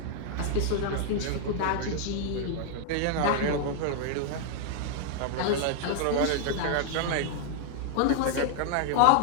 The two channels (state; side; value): different; both; correlation -0.01